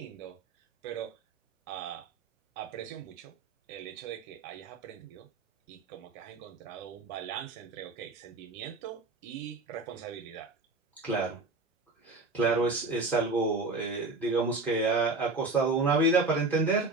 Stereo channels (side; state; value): left; quieter; 3.3 dB